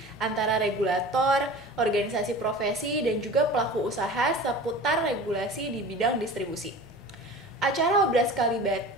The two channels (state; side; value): normal; both; correlation 0.38